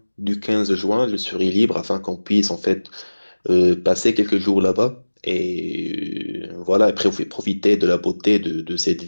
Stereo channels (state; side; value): inverted; both; correlation -1.00